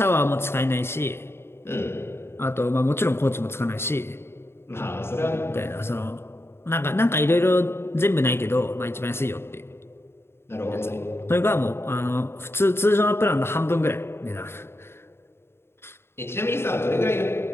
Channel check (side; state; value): right; late; 0.12 ms